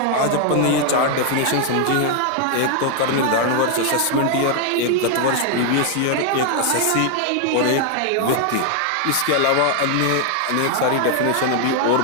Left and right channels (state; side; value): different; both; correlation 0.00